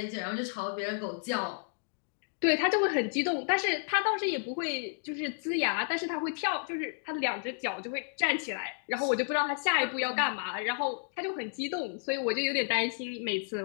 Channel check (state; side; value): silent; right; digital silence